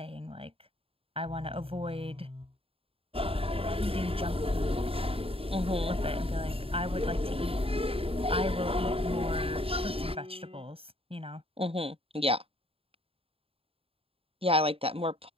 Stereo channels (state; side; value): late; left; 0.27 ms